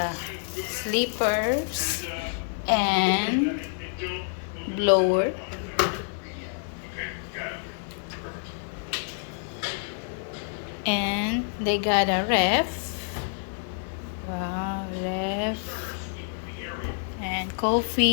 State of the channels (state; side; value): silent; right; digital silence